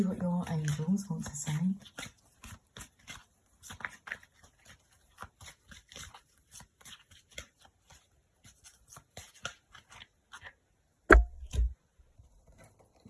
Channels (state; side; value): identical; both; correlation 1.00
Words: what your angels want to say.